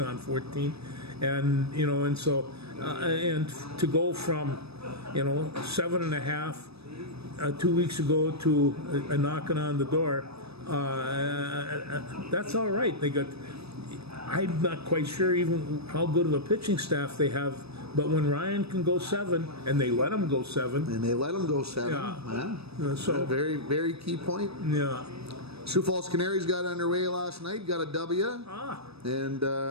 14, and you know, and so and to go from 7.5 2 weeks ago to a knocking on the door, that's all right. I'm not quite sure even how good of a pitching staff they have. But when Ryan can go 7, and they let him go 7, Yeah. So Very, very key point. yeah, Sioux Falls Canaries got underway last night, got a W, ah, and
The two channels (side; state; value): left; late; 0.78 ms